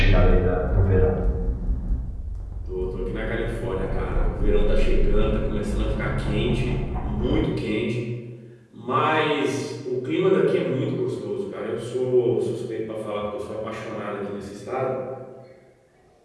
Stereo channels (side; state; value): both; identical; correlation 1.00